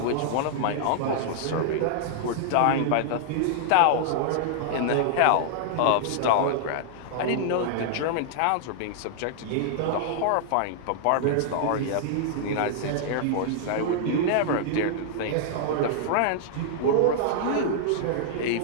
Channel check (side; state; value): both; different; correlation -0.01